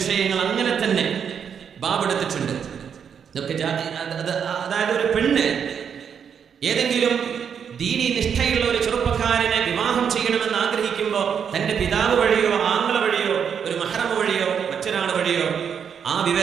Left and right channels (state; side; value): quieter; left; 7.5 dB